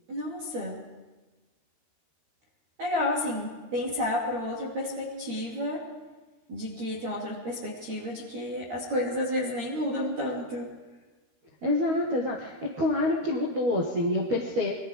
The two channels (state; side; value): late; left; 13 ms